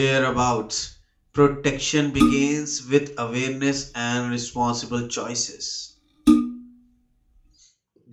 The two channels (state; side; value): identical; both; correlation 1.00